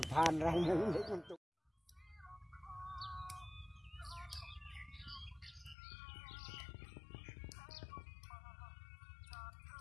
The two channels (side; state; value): right; drops out; at 5.8 s